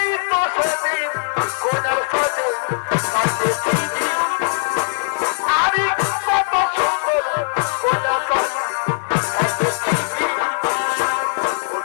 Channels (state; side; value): silent; right; 63 dB below the other